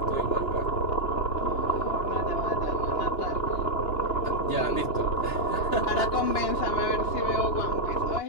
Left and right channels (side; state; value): right; late; 2.9 ms